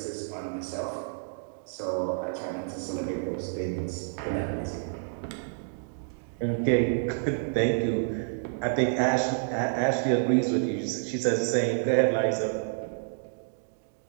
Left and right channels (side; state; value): left; silent; digital silence